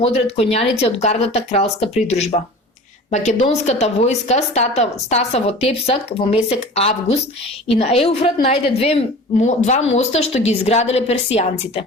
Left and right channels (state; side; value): normal; both; correlation 0.39